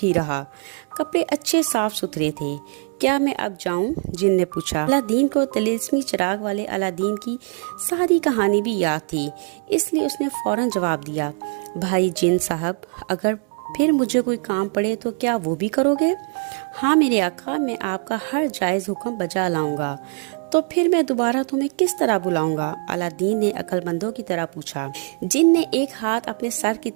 रहा। कपड़े अच्छे साफ सुथरे थे। क्या मैं अब जाऊं? जिन ने पूछा। अलादीन को तिलिस्मी चिराग वाले अलादीन की सारी कहानी भी याद थी, इसलिए उसने फौरन जवाब दिया, भाई जिन साहब, अगर फिर मुझे कोई काम पड़े तो क्या वो भी करोगे? हाँ मेरे आका, मैं आपका हर जायज हुक्म बजा लाऊंगा। तो फिर मैं दोबारा तुम्हें किस तरह बुलाऊंगा? अलादीन ने अक्लमंदों की तरह पूछा। जिन ने एक हाथ अपने सर की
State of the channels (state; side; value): quieter; left; 38.2 dB